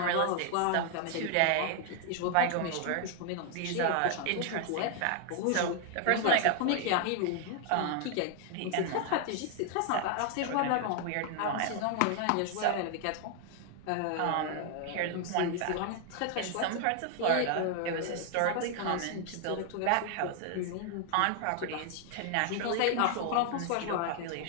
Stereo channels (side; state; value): both; different; correlation 0.00